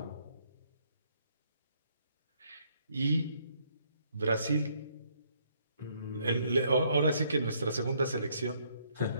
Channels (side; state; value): both; inverted; correlation -0.69